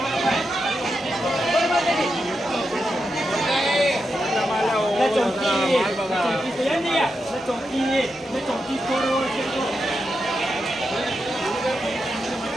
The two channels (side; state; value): both; normal; correlation 0.87